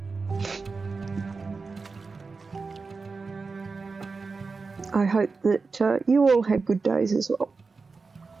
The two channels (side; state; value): left; quieter; 4.3 dB